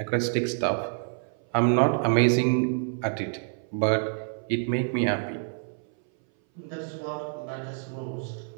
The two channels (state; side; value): silent; left; 58 dB below the other